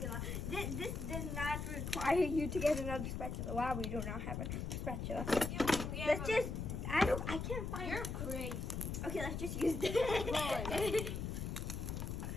This does not require you to get another spatula. Wow, we do not have a spatula. Let's just. I can't find. You're crazy. Okay, let's just use this. Boy.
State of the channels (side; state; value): left; noise; rumble, 3 dB below the sound